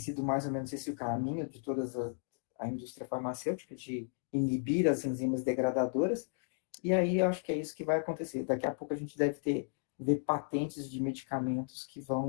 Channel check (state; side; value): silent; right; digital silence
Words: mais ou menos esse o caminho de toda a indústria farmacêutica, de inibir as enzimas degradadoras, e aí eu acho que é isso que vai acontecer. Daqui a pouco a gente deve ver patentes de medicamentos que